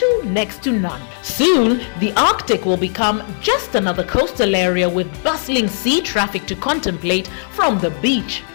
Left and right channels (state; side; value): silent; right; digital silence